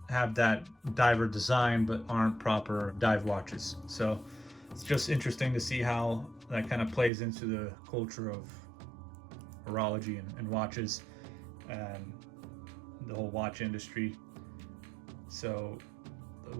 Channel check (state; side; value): drops out; left; at 7.1 s